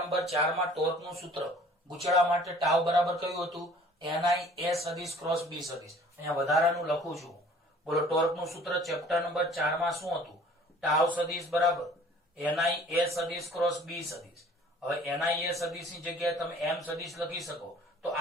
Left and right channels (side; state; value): both; normal; correlation 0.51